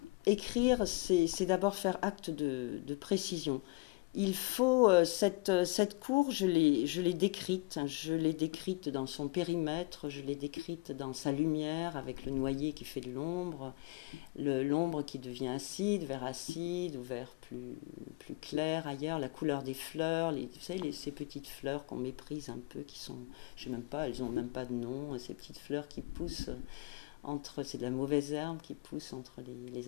écrire, c'est d'abord faire acte de précision. Il faut, cette cour, je l'ai décrite dans son périmètre, je l'ai décrite dans sa lumière, avec le noyer qui fait de l'ombre qui devient acide, vert acide, ou vert plus clair ailleurs, la couleur des fleurs, vous savez, ces petites fleurs qu'on méprise un peu, qui sont, je sais même pas, elles ont même pas de nom, ces petites fleurs qui poussent c'est de la mauvaise herbe qui pousse entre les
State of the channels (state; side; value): quieter; right; 25.1 dB